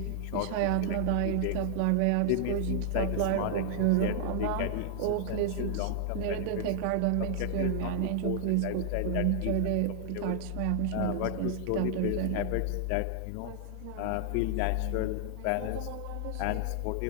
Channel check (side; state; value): both; different; correlation 0.00